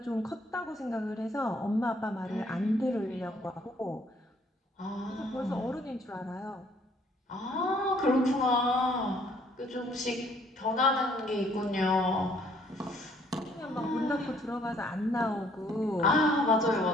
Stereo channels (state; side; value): normal; both; correlation 0.63